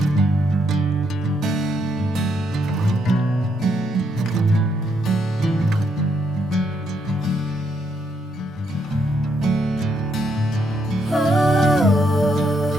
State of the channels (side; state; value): both; normal; correlation 0.75